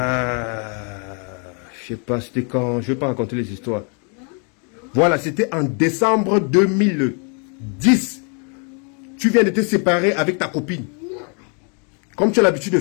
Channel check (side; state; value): right; quieter; 38.6 dB